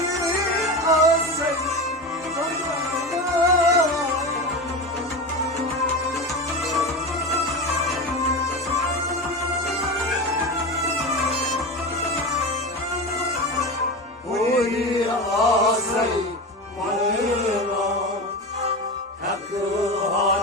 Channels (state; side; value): normal; both; correlation 0.24